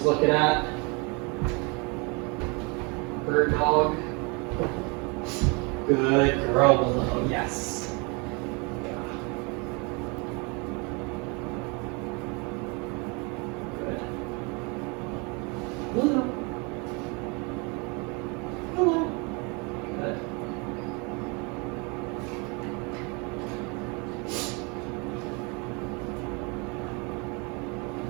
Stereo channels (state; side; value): quieter; left; 30.5 dB